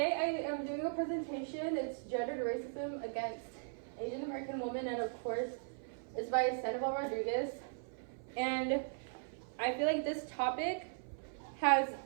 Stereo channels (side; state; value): left; silent; 52 dB below the other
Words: I am doing a presentation. It's gendered racism against Asian American women, and of course, it's by Sandoval Rodriguez. And I feel like this topic has